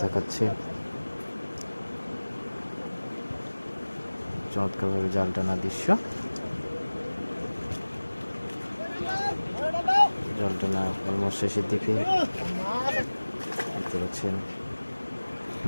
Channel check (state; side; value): inverted; both; correlation -1.00